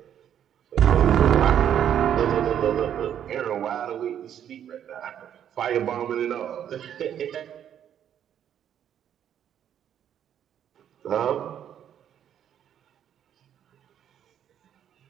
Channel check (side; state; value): left; quieter; 9.7 dB